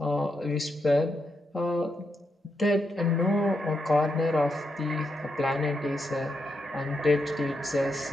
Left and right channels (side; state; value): both; normal; correlation 0.83